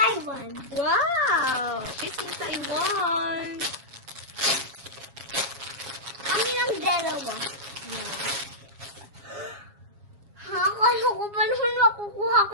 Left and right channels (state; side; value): late; left; 7.3 ms